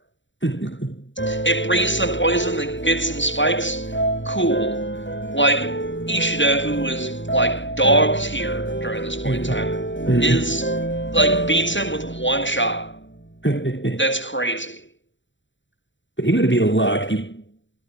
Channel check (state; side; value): late; right; 0.54 ms